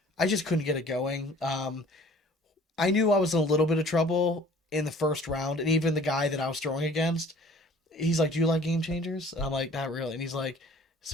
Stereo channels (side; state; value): both; normal; correlation 0.51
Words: I just couldn't get it going. I knew I was in a little bit of trouble in the first round, and even the guy that I was throwing against, he's like, "Do you like game changers?" And I'm like, "Not really." And he's like,